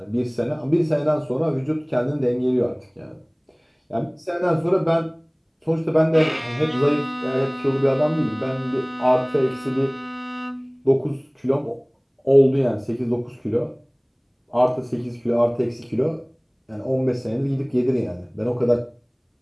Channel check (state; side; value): identical; both; correlation 1.00